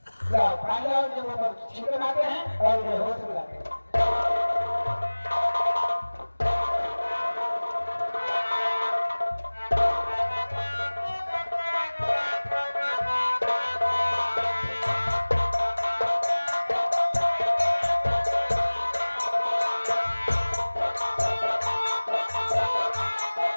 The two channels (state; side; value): inverted; both; correlation -1.00